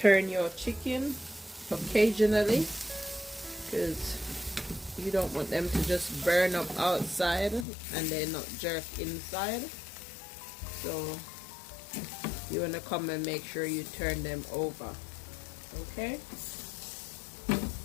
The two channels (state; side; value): drops out; right; at 7.7 s